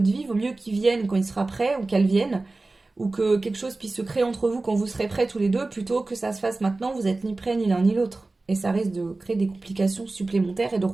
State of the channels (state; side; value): quieter; left; 3.2 dB